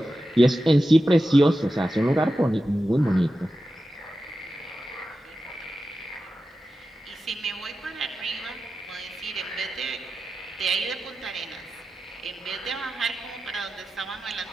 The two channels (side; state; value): both; normal; correlation 0.92